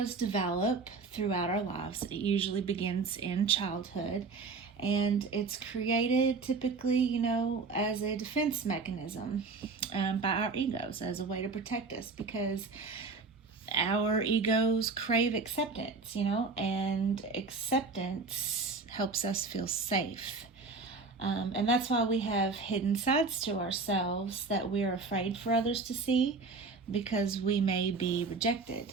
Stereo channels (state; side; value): quieter; left; 4.2 dB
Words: develop throughout our lives. It usually begins in childhood, and it's created typically, as a defense mechanism by our egos, as a way to protect us, because our egos crave acceptance, and acceptance helps us feel safe. And that's why we have hidden sides to ourselves that we're afraid for others to see, because we may be rejected.